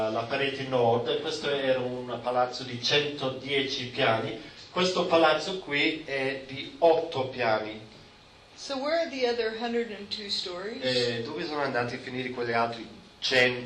parete nord, e questo era un palazzo di 110 piani, questo palazzo qui è di 8 piani. So where are the other 102 stories? Dove sono andati a finire quegli altri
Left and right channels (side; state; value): both; identical; correlation 1.00